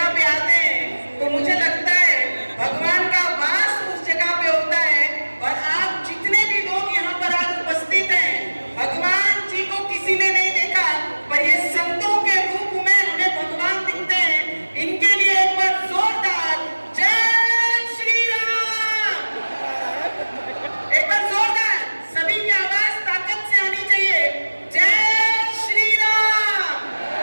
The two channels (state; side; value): inverted; both; correlation -1.00